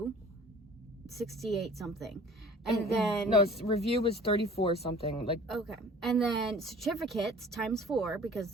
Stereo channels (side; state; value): both; normal; correlation 0.47